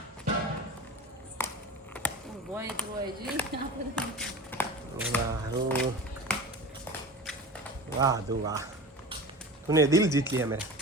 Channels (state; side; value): normal; both; correlation 0.32